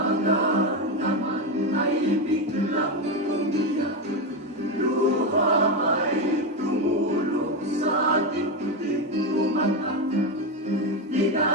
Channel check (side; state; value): both; normal; correlation 0.12